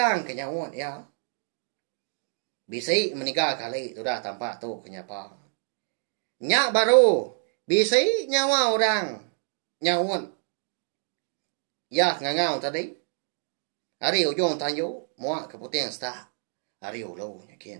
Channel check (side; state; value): left; silent; 60 dB below the other